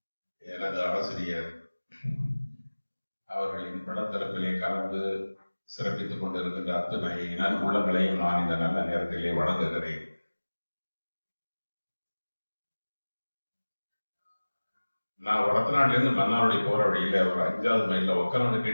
எனது ஆசிரியர் அவர்களின் படத்தரப்பிலே கலந்து சிறப்பித்துக் கொண்டிருக்கின்ற அத்தனை நன்புள்ளங்களையும் நான் இந்த நல்ல நேரத்திலே வழங்குகிறேன். நான் வடத்தநாட்டில இருந்து மன்னாருடைய போற வழியில ஒரு 5வது மைல்ல ஒக்கநாடு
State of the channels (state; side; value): inverted; both; correlation -1.00